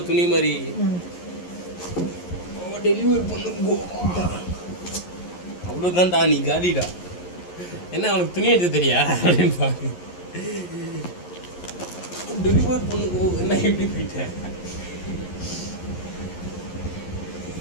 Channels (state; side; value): late; right; 11 ms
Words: துணி மாதிரி. டெலிவரி பண்ணுங்க. அவ்வளோதான்டா, நீ காலிடா. என்ன அவனுக்கு துணி எடுத்து தெரியா அப்படின்னு பாரு. டெலிவரி பண்ணுங்க. என்ன எப்படி போயிட்டேன்?